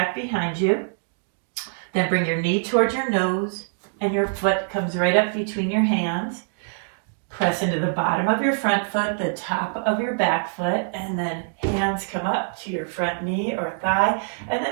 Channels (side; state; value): left; silent; digital silence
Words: behind you. Then bring your knee towards your nose. And your foot comes right up between your hands. Press into the bottom of your front foot, the top of your back foot, and then hands come up to your front knee or thigh, and then